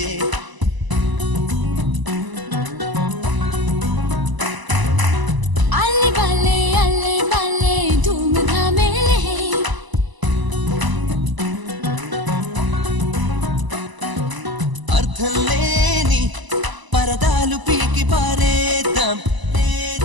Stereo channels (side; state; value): left; late; 1.0 ms